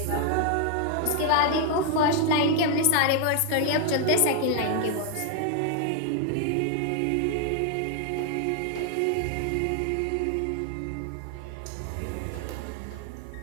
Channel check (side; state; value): both; different; correlation 0.00